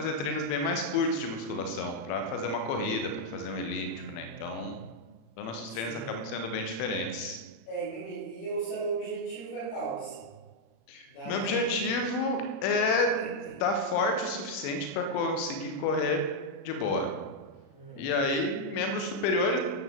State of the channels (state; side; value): late; right; 36 ms